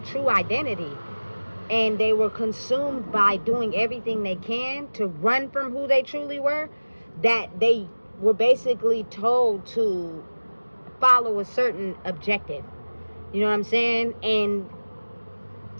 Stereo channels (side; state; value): both; inverted; correlation -1.00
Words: identity. And they were consumed by doing everything they can to run from who they truly were, that they were basically told to follow a certain objective. You know what I'm saying? And